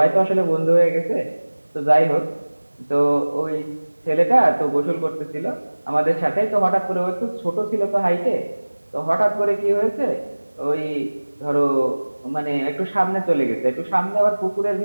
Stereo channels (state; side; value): inverted; both; correlation -1.00